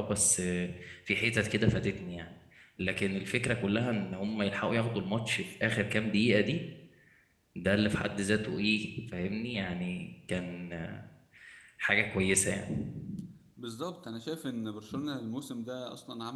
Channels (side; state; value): both; identical; correlation 1.00